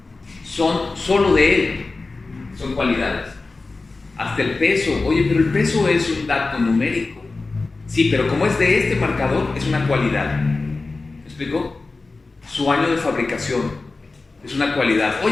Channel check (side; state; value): right; quieter; 3.6 dB